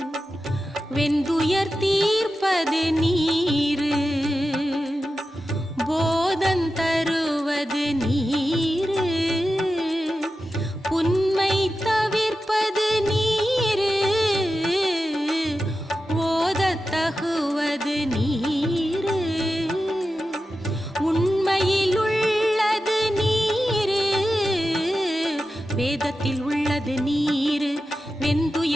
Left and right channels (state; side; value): normal; both; correlation 0.92